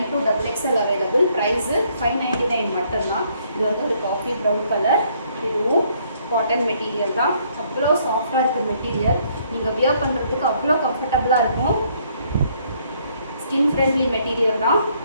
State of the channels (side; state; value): both; inverted; correlation -0.67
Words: அவைலபிள். ப்ரைஸு 599 மட்டும்தான். இது வந்து ஒரு காஃபி ப்ரௌன் கலர். இதுவும் காட்டன் மெட்டீரியல் தான். அவ்வளோ சாஃப்டாக இருக்குது மெட்டீரியல். நீங்கள் வியர் பண்ணுறதுக்கு அவ்வளோ கம்ஃபர்டபுளாக இருக்கும். ஸ்கின் ஃப்ரெண்ட்லி மெட்டீரியல் தான்.